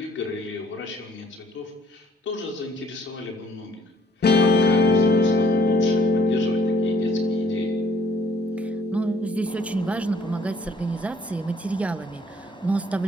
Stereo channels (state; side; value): normal; both; correlation 0.61